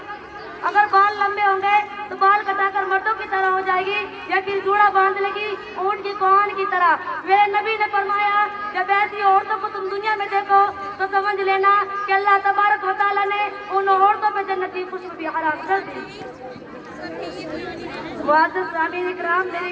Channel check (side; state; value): both; identical; correlation 1.00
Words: अगर बाल लंबे होंगे तो बाल कटाकर मर्दों की तरह हो जाएगी, या फिर जूड़ा बांध लेगी ऊँट की कोहन की तरह। मेरे नबी ने फरमाया, जब ऐसी औरतों को तुम दुनिया में देखो तो समझ लेना कि अल्लाह तबारक व तआला ने उन औरतों पर जन्नत की खुशबू भी हराम कर दी। मुअज़्ज़िज़ सामीन इकराम, मेरी